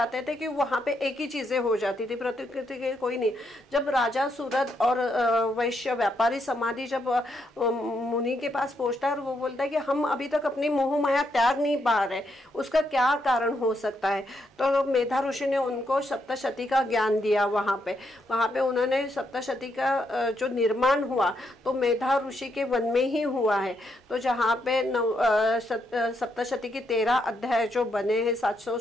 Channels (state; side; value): normal; both; correlation 0.78